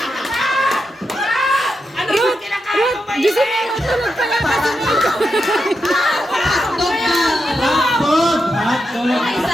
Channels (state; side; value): normal; both; correlation 0.86